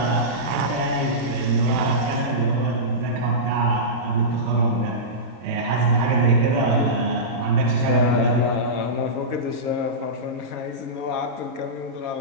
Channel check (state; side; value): late; left; 22 ms